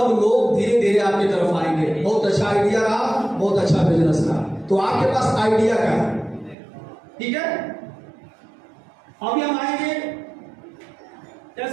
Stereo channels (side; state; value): left; drops out; at 6.6 s